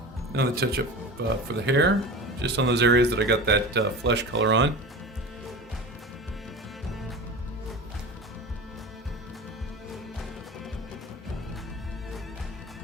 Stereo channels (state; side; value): normal; both; correlation 0.32